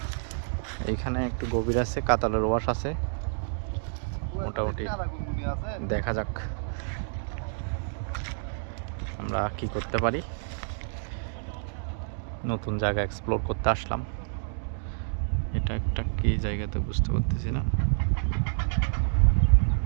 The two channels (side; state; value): left; silent; digital silence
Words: এইখানে একটু গভীর আছে, কাতালের ওয়াশ আছে, মোটামুটি দেখা যাক আমরা কি করতে পারি। নতুন জায়গা এক্সপ্লোর করতে আসলাম। এটা একটা কি জায়গাতে বুঝতে পারতেছি না।